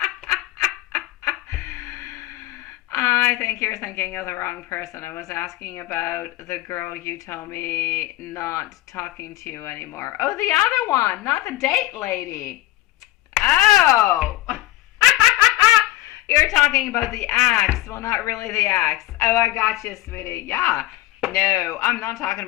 I think you're thinking of the wrong person. I was asking about the girl you told me not talking to you anymore. Oh, the other one, not the date lady. Oh! You're talking about the ex. Well, not really the ex. Oh, I got you, sweetie. Yeah. No, I'm not talking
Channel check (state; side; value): quieter; right; 16.6 dB